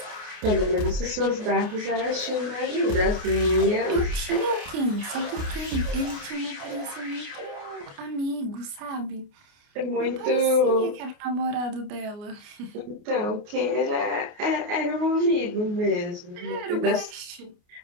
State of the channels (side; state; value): left; late; 29 ms